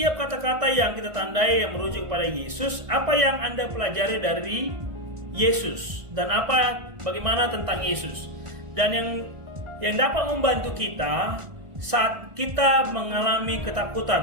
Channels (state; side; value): late; left; 1.6 ms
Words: kata-kata yang kita tandai yang merujuk pada Yesus. Apa yang Anda pelajari dari Yesus dan bagaimana tentang Yesus? Dan yang dapat membantu kita saat kita mengalami